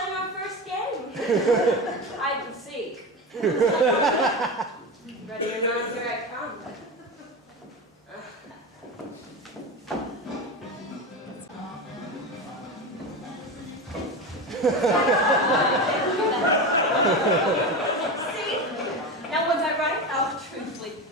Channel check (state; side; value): normal; both; correlation 0.22